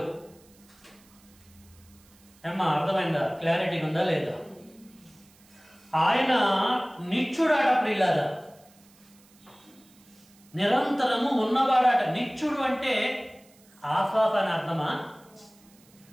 ఏమ్మా అర్థమైందా? క్లారిటీ ఉందా లేదా? ఆయన నిత్యుడాట ప్రియులారా, నిరంతరము ఉన్నవాడాట. నిత్యుడు అంటే ఆఫాఫ్ అని అర్థమా?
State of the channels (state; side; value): noise; right; hiss, 28 dB below the sound